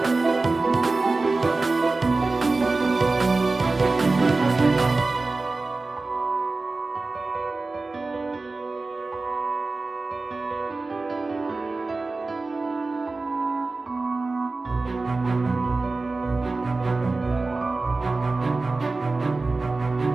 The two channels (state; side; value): quieter; left; 3.5 dB